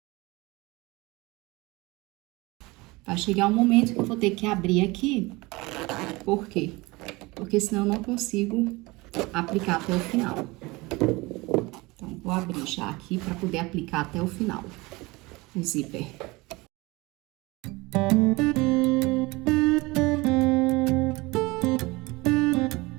Vai chegar um momento que eu vou ter que abrir aqui, por quê? Porque senão eu não consigo aplicar até o final. Então, vou abrir já aqui para poder aplicar até o final o zíper.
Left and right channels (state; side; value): quieter; left; 23.0 dB